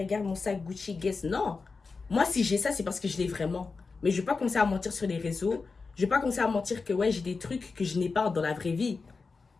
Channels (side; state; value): right; quieter; 4.4 dB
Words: mon sac Gucci, guess. Non. Moi si j'ai ça, c'est parce que je l'ai vraiment. Mais je vais pas commencer à mentir sur les réseaux. Je vais pas commencer à mentir que ouais, j'ai des trucs que je n'ai pas dans la vraie vie.